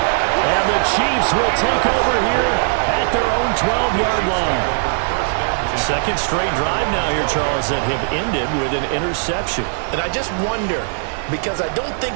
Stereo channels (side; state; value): left; silent; digital silence